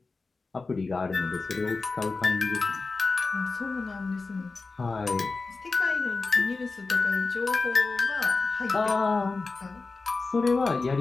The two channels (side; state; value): right; quieter; 3.9 dB